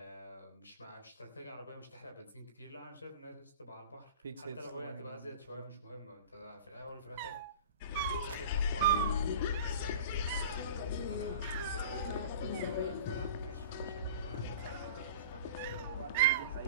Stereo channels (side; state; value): both; inverted; correlation -0.38